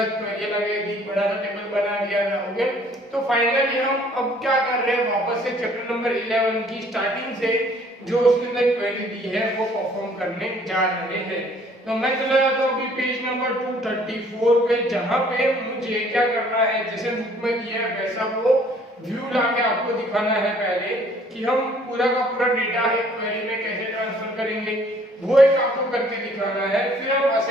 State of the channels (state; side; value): normal; both; correlation 0.58